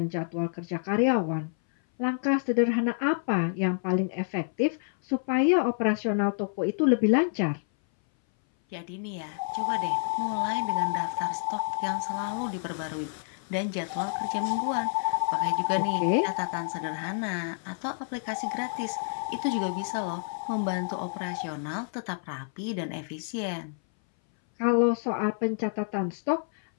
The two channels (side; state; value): right; silent; 58 dB below the other